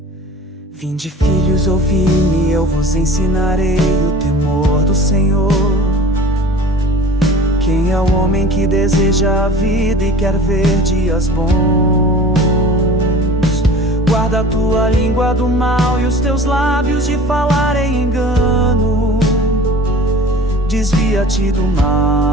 Vinde, filhos, ouvi-me, eu vos ensinarei o temor do Senhor. Quem é o homem que deseja a vida e quer ver dias bons? Guarda a tua língua do mal e os teus lábios de falar em engano. Desvia-te do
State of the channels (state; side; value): normal; both; correlation 0.42